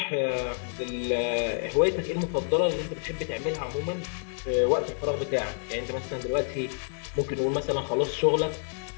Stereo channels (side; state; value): right; silent; 59 dB below the other